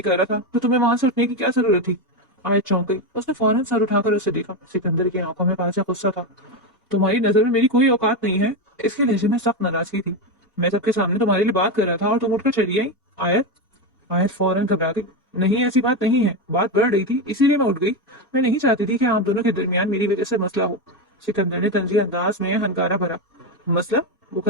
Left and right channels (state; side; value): normal; both; correlation 0.12